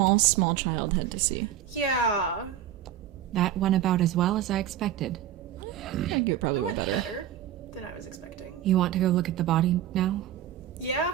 small child had to see. Yeah. That went about as well as I expected. I think it That probably went went better. better than I was expecting. You want to go look at the body now?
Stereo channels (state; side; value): quieter; left; 10.6 dB